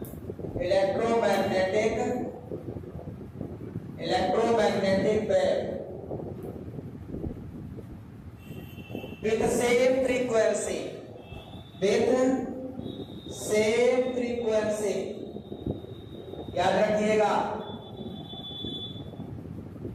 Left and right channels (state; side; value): identical; both; correlation 1.00